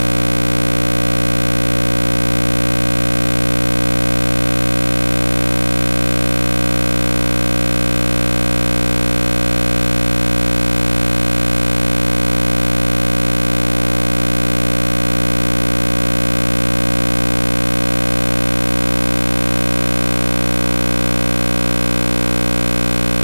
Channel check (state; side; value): inverted; both; correlation -1.00